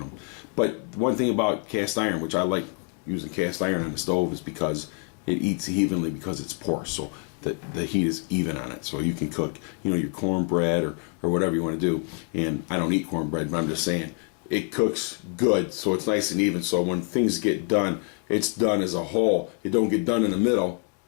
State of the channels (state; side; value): quieter; right; 39.4 dB